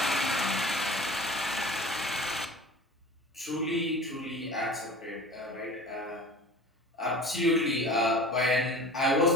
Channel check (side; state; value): both; normal; correlation 0.39